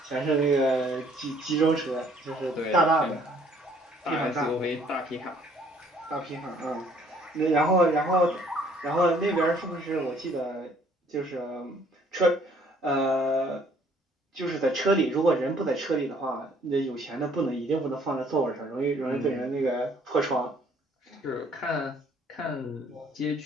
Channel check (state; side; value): normal; both; correlation 0.60